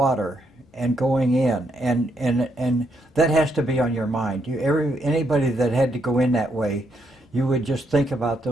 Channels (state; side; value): normal; both; correlation 0.77